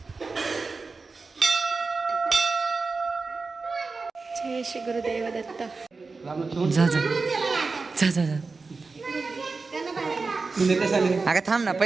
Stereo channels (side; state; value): left; quieter; 4.2 dB